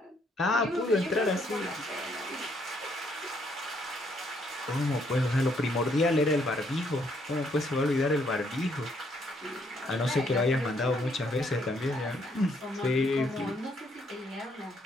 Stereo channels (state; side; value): normal; both; correlation 0.70